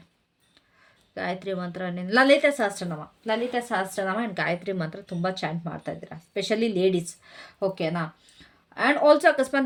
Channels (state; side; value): identical; both; correlation 1.00